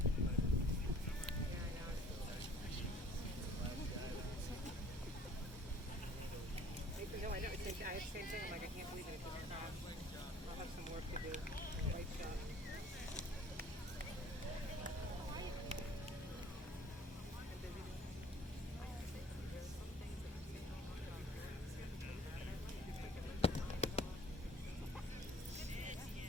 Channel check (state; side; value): normal; both; correlation 0.53